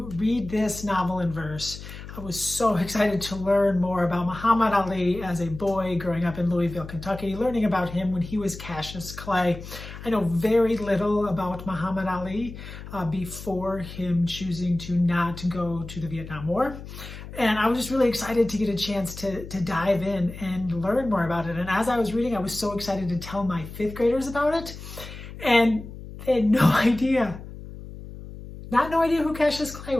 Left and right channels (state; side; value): noise; left; hum, 13 dB below the sound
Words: read this novel in verse. I was so excited to learn more about Muhammad Ali as a boy growing up in Louisville, Kentucky, learning about him when he was Cassius Clay. I know very little about Muhammad Ali before him choosing to not go to the Vietnam War. And I was just really excited to get a chance to dive in and learn more about it. And as I was reading, I was so excited to tell my 5th graders about it. And they had no idea, no idea who Cassius Clay